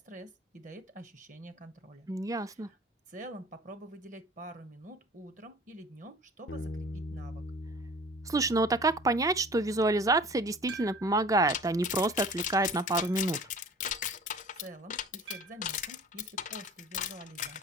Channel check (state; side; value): normal; both; correlation 0.45